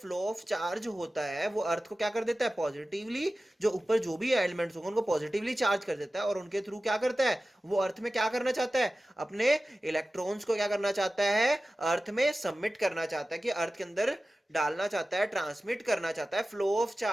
ऑफ चार्ज होता है, वो अर्थ को क्या कर देता है? पॉजिटिवली, जो ऊपर जो भी एलिमेंट्स होंगे उनको पॉजिटिवली चार्ज कर देता है, और उनके थ्रू क्या करता है? वो अर्थ में क्या करना चाहता है? अपने इलेक्ट्रॉन्स को क्या करना चाहता है? अर्थ में सबमिट करना चाहता है, कि अर्थ के अंदर डालना चाहता है, ट्रांसमिट करना चाहता है फ्लो ऑफ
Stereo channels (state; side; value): normal; both; correlation 0.96